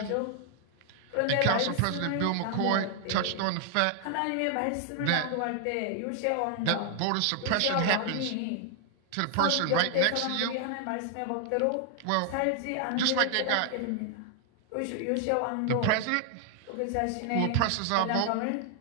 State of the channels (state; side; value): different; both; correlation 0.00